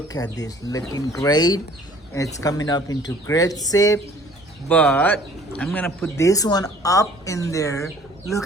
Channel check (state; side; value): normal; both; correlation 0.53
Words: at this, looking great. It's coming up into great shape, but I'm gonna put this one up in there. Look